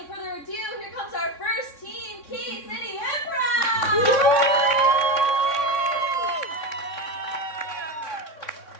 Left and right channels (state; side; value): late; right; 3.6 ms